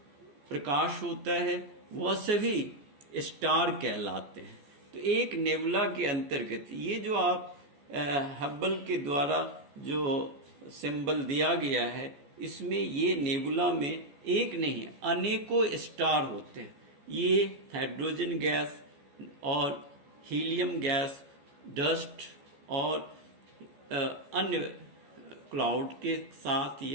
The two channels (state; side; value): late; left; 14 ms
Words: प्रकाश होता है, वह सभी स्टार कहलाते हैं। तो एक नेबुला के अंतर्गत ये जो आप हब्बल के द्वारा जो सिंबल दिया गया है, इसमें ये नेबुला में एक नहीं अनेकों स्टार होते हैं। ये हाइड्रोजन गैस और हीलियम गैस, डस्ट और अन्य क्लाउड के साथ